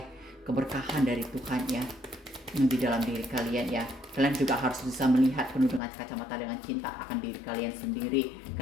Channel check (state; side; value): drops out; right; at 5.8 s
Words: keberkahan dari Tuhan ya di dalam diri kalian ya. Kalian juga harus bisa melihat penuh dengan kacamata dengan cinta akan diri kalian sendiri.